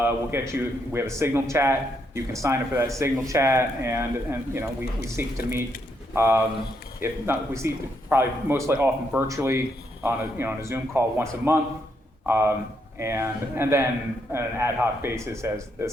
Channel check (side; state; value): both; normal; correlation 0.77